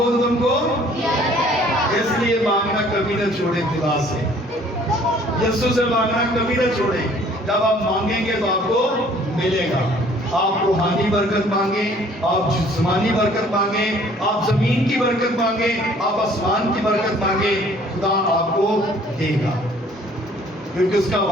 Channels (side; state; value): both; normal; correlation 0.56